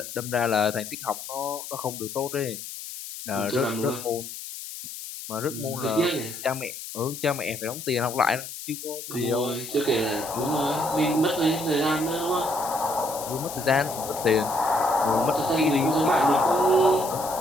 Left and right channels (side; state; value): left; noise; hiss, 10 dB below the sound